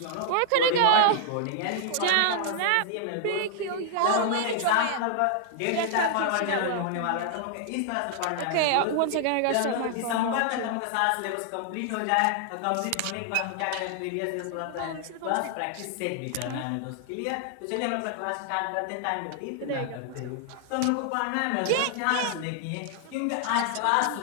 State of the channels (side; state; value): both; different; correlation 0.00